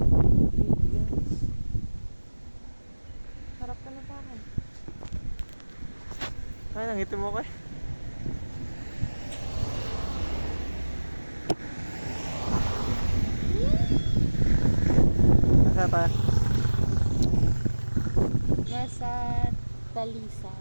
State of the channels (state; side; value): inverted; both; correlation -1.00